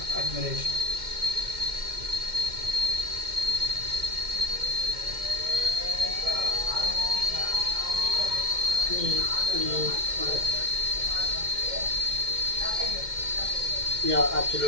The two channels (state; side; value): late; left; 2.1 ms